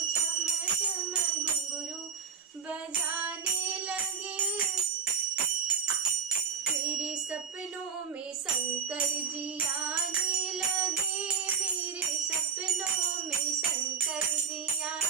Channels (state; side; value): quieter; left; 6.4 dB